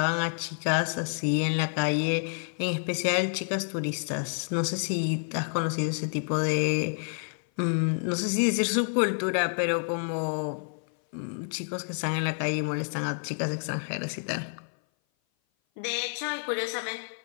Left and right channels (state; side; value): silent; right; 56 dB below the other